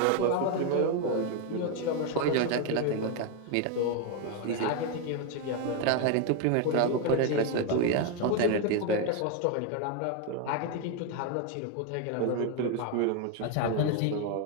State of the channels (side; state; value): both; different; correlation 0.01